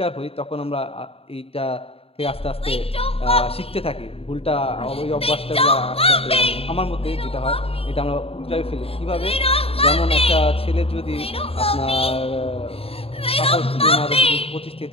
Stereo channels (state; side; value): late; right; 0.28 ms